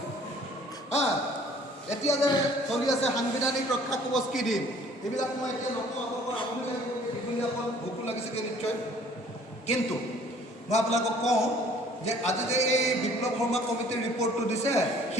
এতিয়া যে চলি আছে সাংবিধানিক ৰক্ষা কৱচ কি দিম, এইবিলাক মই এতিয়া নকওঁ। আপোনালোকৰ আমনি লাগিব, দীঘলীয়াখন ভোকো লাগিছেগৈ নিশ্চয়। কিন্তু মই আপোনালোকক কওঁ যে আজি যে এই বিপ্লৱ শৰ্মা কমিটিৰ ৰিপৰ্টটো দিছে,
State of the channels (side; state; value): both; normal; correlation 0.55